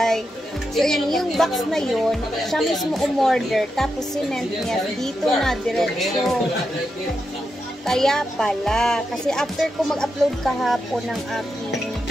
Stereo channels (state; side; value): normal; both; correlation 0.86